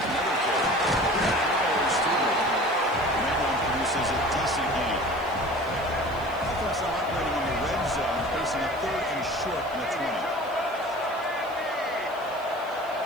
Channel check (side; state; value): right; noise; hiss, 24 dB below the sound